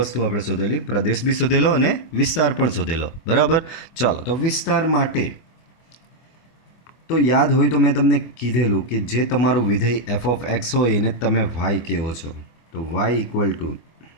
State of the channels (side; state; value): right; late; 24 ms